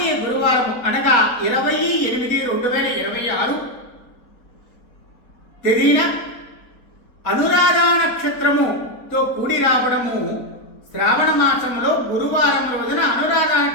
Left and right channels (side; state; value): right; late; 4.0 ms